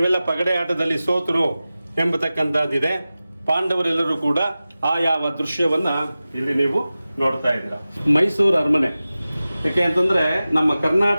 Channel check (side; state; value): both; inverted; correlation -0.96